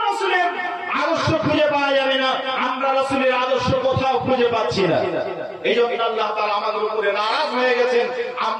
রাসূলের আদর্শ খুঁজে পাওয়া যাবে না। আমরা রাসূলের আদর্শ কোথাও খুঁজে পাচ্ছি না। এই জন্য আল্লাহ তাআলা আমাদের উপরে নারাজ হয়ে গেছেন।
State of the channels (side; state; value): both; identical; correlation 1.00